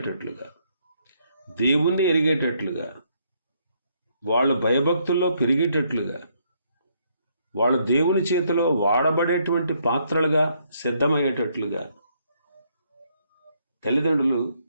దేవుణ్ణి ఎరిగేటట్లుగా, వాళ్ళు భయభక్తుల్లో పెరిగేటట్లుగా, వాళ్ళు దేవుని చేతిలో వాడబడేటువంటి పాత్రలుగా సిద్ధమయ్యేటట్లుగా తల్లిదండ్రులు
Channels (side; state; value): both; inverted; correlation -0.72